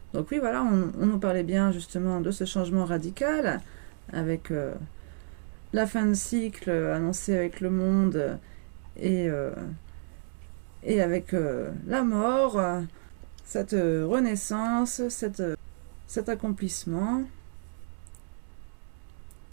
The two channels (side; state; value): left; silent; digital silence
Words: Donc oui, voilà, on nous parlait bien justement de ce changement radical avec la fin de cycle annoncée avec le monde et avec la mort, cette renaissance, cet accomplissement.